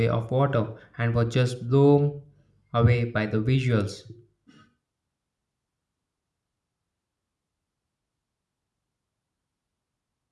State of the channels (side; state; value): both; identical; correlation 1.00